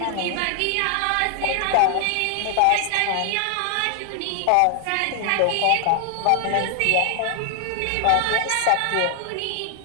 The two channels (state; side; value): different; both; correlation 0.00